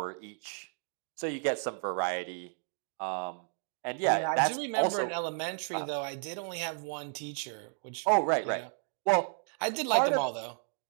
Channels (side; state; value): left; silent; 56 dB below the other